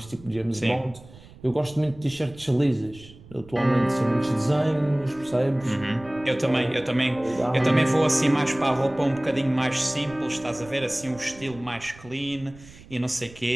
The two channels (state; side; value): noise; right; rumble, 21 dB below the sound